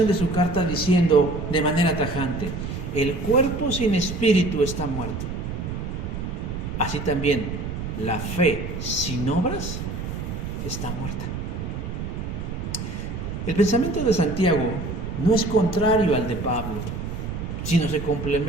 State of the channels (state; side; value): noise; right; rumble, 6 dB below the sound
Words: de su carta diciendo de manera tajante: el cuerpo sin espíritu está muerto. Así también la fe sin obras está muerta. El pensamiento de Santiago no es contrario al de Pablo, sino se